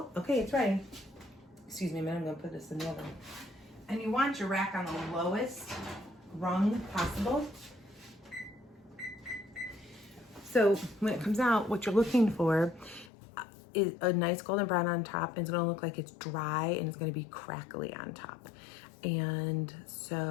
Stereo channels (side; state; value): right; drops out; at 13.1 s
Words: okay, it's ready. Excuse me a minute, I'm gonna put this in the oven. And you want your rack on the lowest rung possible. So when it comes out, what you're looking for is a nice golden brown on top, and it's gonna look like it's dry, and it's gonna be crackly on top. And